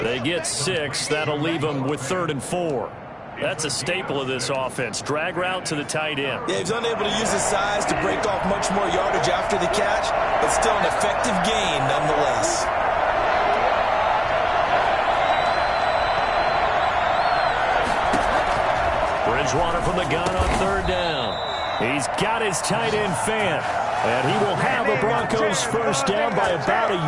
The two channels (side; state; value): both; identical; correlation 1.00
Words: They get 6. That'll leave him with 3rd and 4. That's a staple of this offense. Drag route to the tight end. Yeah, he's unable to use his size to break off much more yardage after the catch, but still an effective gain nonetheless. Bridgewater from the gun on 3rd down. He's got his tight end, Fant. And he will have the Broncos first down by about